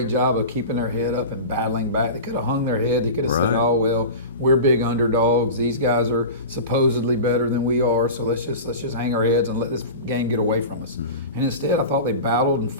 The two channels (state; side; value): inverted; both; correlation -0.31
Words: job of keeping their head up and battling back. They could have hung their head. They could have said, "Oh well, we're big underdogs. These guys are supposedly better than we are. So let's just hang our heads and let this game get away from us." And instead, I thought they battled and